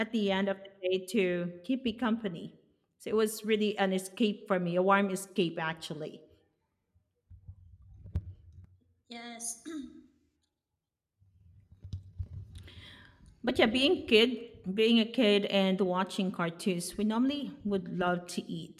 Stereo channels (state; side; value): identical; both; correlation 1.00